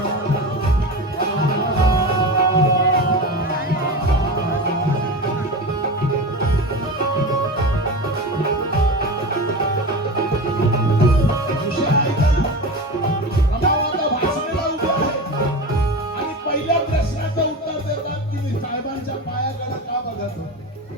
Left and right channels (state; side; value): normal; both; correlation 0.26